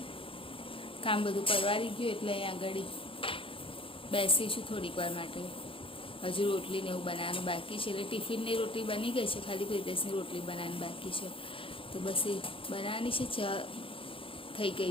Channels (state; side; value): late; right; 0.26 ms